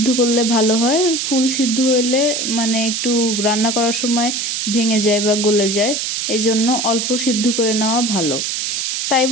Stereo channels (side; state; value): right; noise; hiss, 1 dB below the sound